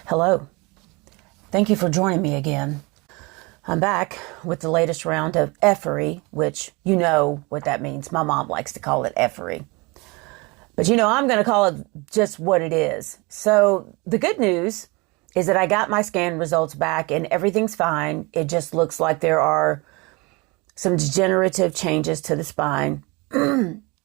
Hello. Thank you for joining me again. I'm back with the latest round of effery, which you know what that means. My mom likes to call it effery. But I'm going to call it just what it is. So the good news is that I got my scan results back and everything's fine. It just looks like there are some degenerative changes to the spine.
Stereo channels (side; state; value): left; quieter; 26.6 dB